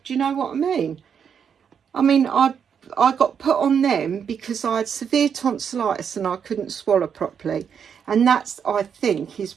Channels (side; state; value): left; quieter; 7.4 dB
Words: Do you know what I mean? I mean, I got put on them because I had severe tonsillitis and I couldn't swallow properly. And that's, I think, is